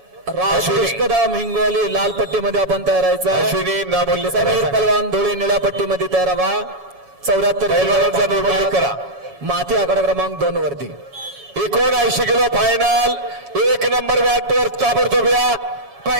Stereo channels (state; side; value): late; left; 7.2 ms